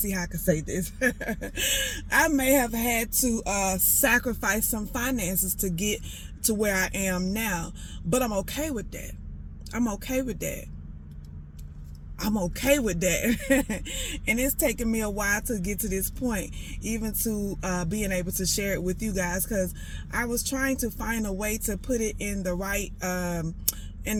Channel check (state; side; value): identical; both; correlation 1.00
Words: how I can say this. I may have had to sacrifice some finances to get to where I am now. But I'm okay with that. I'm okay with that. I'm okay with that. And it's taken me a while to get to this point, even to being able to share it with you guys, because I was trying to find a way to put it in the right